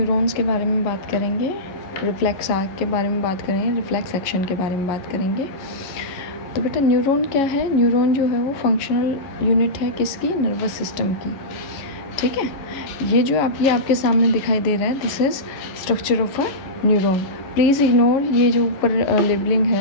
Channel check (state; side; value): late; right; 11 ms